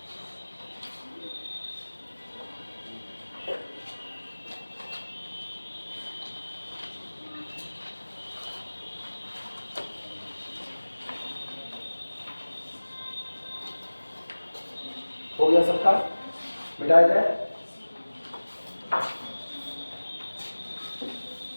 हो गया सबका, मिटाया जाए।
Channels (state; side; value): inverted; both; correlation -1.00